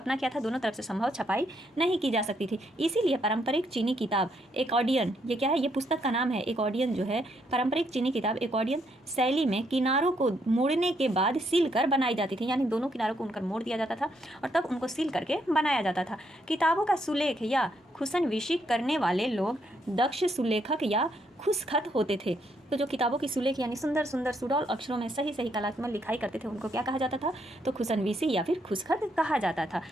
क्या था, दोनों तरफ से संभव छपाई नहीं की जा सकती थी। इसीलिए पारंपरिक चीनी किताब एकॉर्डियन, ये क्या है, ये पुस्तक का नाम है एकॉर्डियन, जो है पारंपरिक चीनी किताब एकॉर्डियन शैली में किनारों को मोड़ने के बाद सील कर बनाई जाती थी, यानी दोनों किनारों को उनकर मोड़ दिया जाता था और तब उनको सील करके बनाया जाता था। किताबों का सुलेख या खुशनविशी करने वाले लोग दक्ष सुलेखक या खुशखत होते थे। तो जो किताबों की सुलेख यानी सुंदर सुंदर सुडौल अक्षरों में सही सही कलात्मक लिखाई करते थे, उनको क्या कहा जाता था, तो खुशनवीसी या फिर खुशखत कहा जाता था।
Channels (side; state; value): both; normal; correlation 0.74